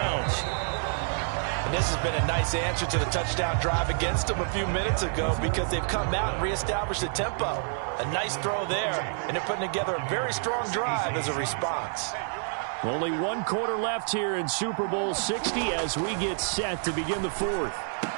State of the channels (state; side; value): silent; left; 56 dB below the other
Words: And this has been a nice answer to the touchdown drive against them a few minutes ago, because they've come out and reestablished the tempo. A nice throw there, and they're putting together a very strong drive as a response. Only 1 quarter left here in Super Bowl 60 as we get set to begin the 4th.